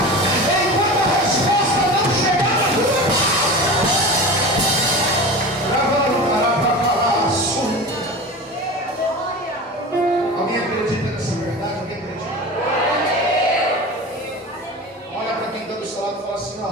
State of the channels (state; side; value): normal; both; correlation 0.31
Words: enquanto a resposta não chegar na tua. Alguém acredita nessa verdade? Alguém acredita? Olha para quem está do seu lado e fala assim: ó,